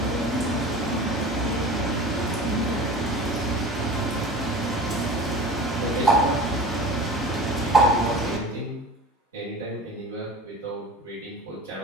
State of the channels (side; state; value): both; normal; correlation 0.37